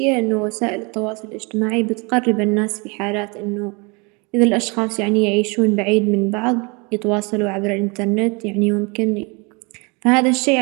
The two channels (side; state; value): left; quieter; 30.0 dB